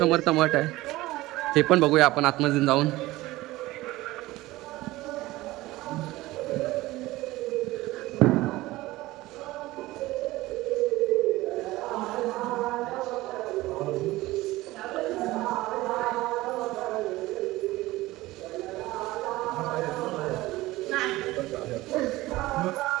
मठ आहे, ते पण बघूया आपण आतमध्ये जाऊन.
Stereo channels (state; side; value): quieter; left; 18.4 dB